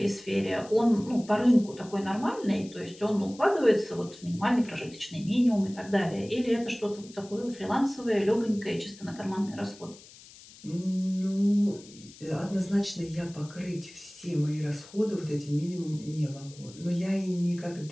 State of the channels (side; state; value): left; noise; hiss, 21 dB below the sound